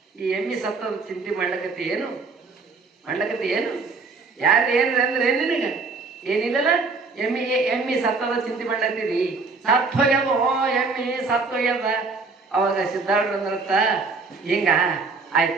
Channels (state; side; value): quieter; left; 4.2 dB